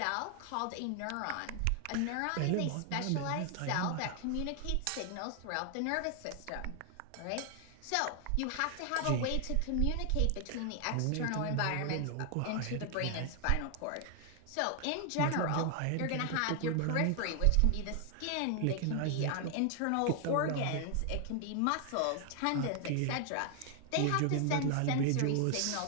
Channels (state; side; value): different; both; correlation 0.00